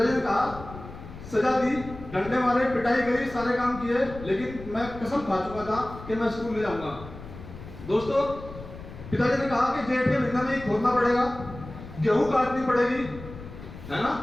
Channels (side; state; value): left; noise; rumble, 14 dB below the sound